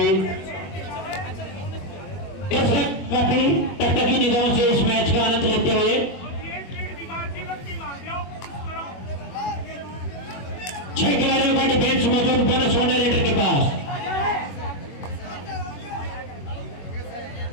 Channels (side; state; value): right; late; 21 ms